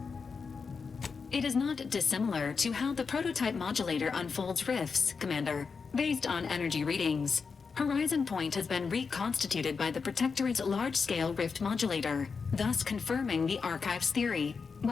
It is not dissimilar to how the prototype modulator unfolds rifts, Commander, based on energy readings. Horizon Point has been reconstituted by the Protectorate's large-scale rift modulator, thus confirming the Archive's theory.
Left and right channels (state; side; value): quieter; right; 5.2 dB